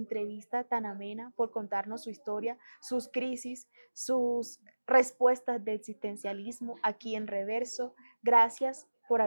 tan amena, por contarnos su historia, sus crisis, sus respuestas de existencialismo aquí en Reverso. Gracias por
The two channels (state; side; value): inverted; both; correlation -1.00